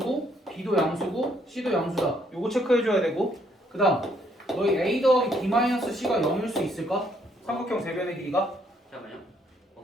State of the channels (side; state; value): both; normal; correlation 0.69